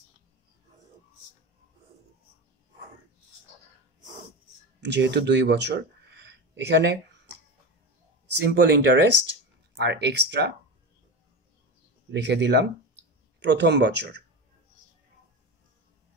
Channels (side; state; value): both; normal; correlation 0.22